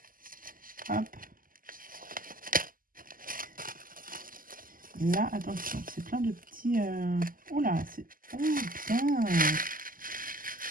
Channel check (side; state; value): left; late; 0.41 ms